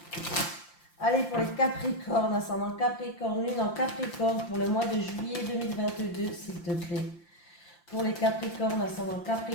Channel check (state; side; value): late; right; 5.8 ms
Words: Allez, pour les Capricornes, ascendant Capricorne, lune en Capricorne, pour le mois de juillet 2022, s'il te plaît. Pour les Capricornes, ascendant